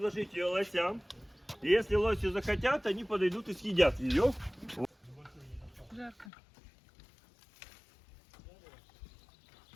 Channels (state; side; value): drops out; right; at 6.3 s